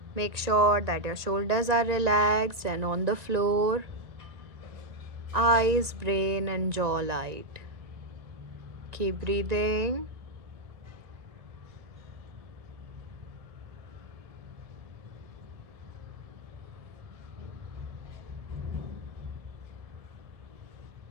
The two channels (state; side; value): late; left; 1.9 ms